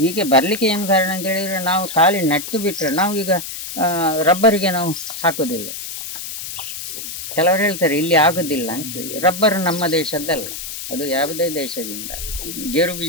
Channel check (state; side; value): noise; left; hiss, 8 dB below the sound